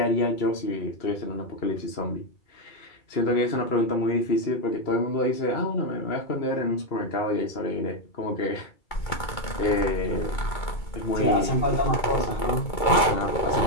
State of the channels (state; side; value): late; right; 2.2 ms